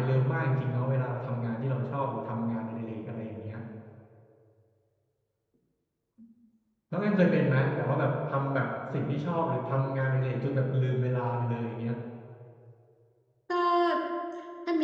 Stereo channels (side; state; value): both; identical; correlation 1.00